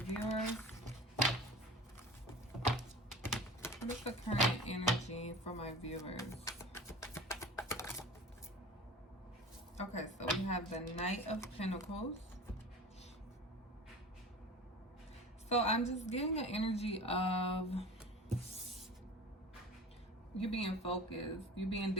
What is the current energy for my viewers? Okay, so we have the Knight of Pentacles. So I'm just getting an energy of you being focused, you being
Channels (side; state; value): both; normal; correlation 0.38